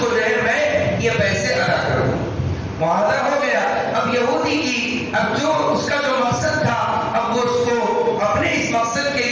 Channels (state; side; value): identical; both; correlation 1.00